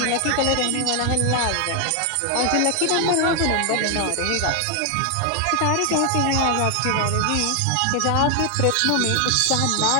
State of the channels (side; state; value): both; different; correlation 0.00